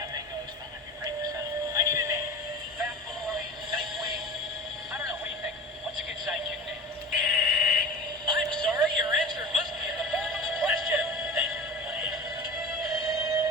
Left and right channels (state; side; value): normal; both; correlation 0.34